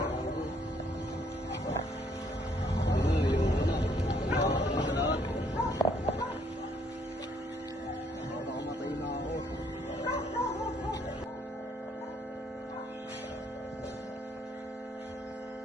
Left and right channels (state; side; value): normal; both; correlation 0.67